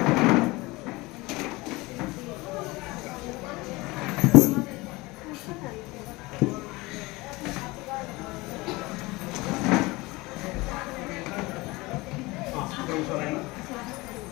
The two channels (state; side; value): quieter; right; 22.3 dB